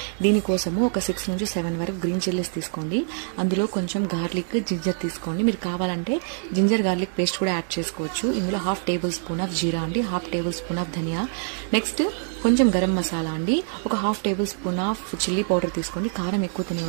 దీనికోసము ఒక 6 నుంచి 7 వరకు గ్రీన్ చిల్లీస్ తీసుకోండి. అందులో కొంచెం గార్లిక్, జింజర్ తీసుకోండి. మీరు కావాలంటే జింజర్ గార్లిక్ పేస్ట్ కూడా యాడ్ చేసుకోవచ్చు. ఇందులో 1/2 టేబుల్ స్పూన్ ఆఫ్ జీరా అండి, 1/2 టేబుల్ స్పూన్ ఆఫ్ ధనియా, నెక్స్ట్ కొంచెం గరం మసాలా అండి, ఒక 1/2 tablespoon of chilli powder తీసుకోండి. కారం ఎక్కువ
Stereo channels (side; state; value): left; silent; 62 dB below the other